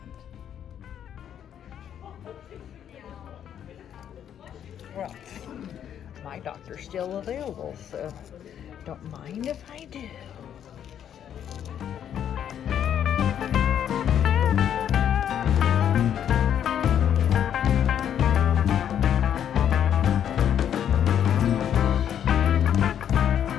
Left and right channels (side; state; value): right; quieter; 9.5 dB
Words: Well, my doctor's still available, so don't mind if I do.